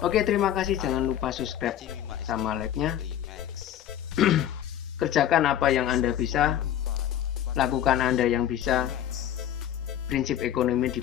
Oke, terima kasih. Jangan lupa subscribe sama like-nya. Kerjakan apa yang Anda bisa, lakukan Anda yang bisa. Prinsip ekonomi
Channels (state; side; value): quieter; right; 11.0 dB